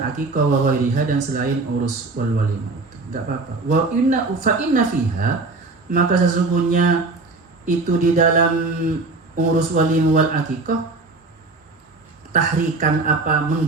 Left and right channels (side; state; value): left; quieter; 3.6 dB